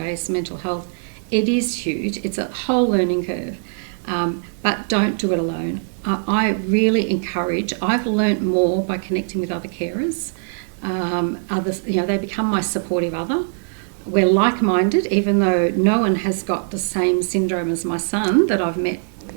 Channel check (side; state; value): left; silent; digital silence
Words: mental health. It is huge. It's a whole learning curve. But don't do it alone. I really encourage, I've learnt more by connecting with other carers. Others, they become my supportive other. We're like-minded, even though no one has got the same syndrome as my son that I've